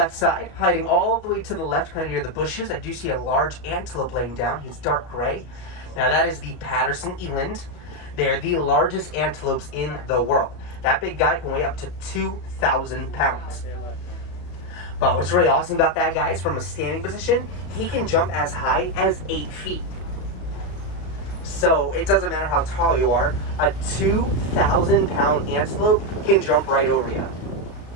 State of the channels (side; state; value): right; late; 33 ms